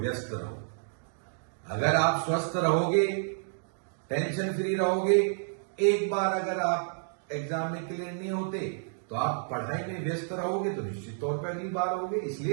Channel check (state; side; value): silent; left; digital silence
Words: रहो। अगर आप स्वस्थ रहोगे, टेंशन फ्री रहोगे, एक बार अगर आप एग्जाम में क्लियर नहीं होते तो आप पढ़ाई में व्यस्त रहोगे तो निश्चित तौर पर अगली बार होगे।